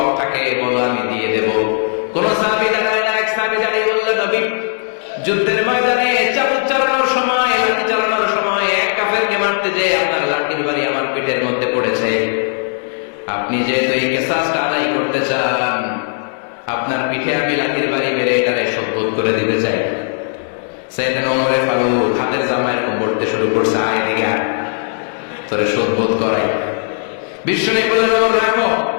থাকে বলো, আমি দিয়ে দেব। কোন সাহাবী দাঁড়ায় না, এক সাহাবী দাঁড়িয়ে বললেন, নবী, যুদ্ধের ময়দানে চাবুক চালানোর সময়, লাঠি চালানোর সময় এক কাফেরকে মারতে যে আপনার লাঠির বাড়ি আমার পিঠের মধ্যে পড়েছে। আপনি যেহেতু এই কিসাসটা আদায় করতে চান, আপনার পিঠে আমি লাঠির বাড়ি মেরে এটারে শোধ করে দিতে চাই। সাইয়েদনা ওমর ফারুক হাতের জামা এরকম পড়তে শুরু করছে, আয় দিকে আয়, তোরে শোধ করাই। বিশ্বনবী বললেন, ওমর রাখো,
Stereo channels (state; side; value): silent; right; 56 dB below the other